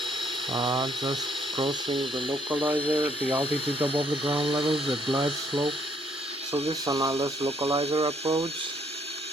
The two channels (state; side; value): normal; both; correlation 0.67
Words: Just crossing the localizer, the altitude above the ground level, the glide slope. So this is an Lszh localizer approach.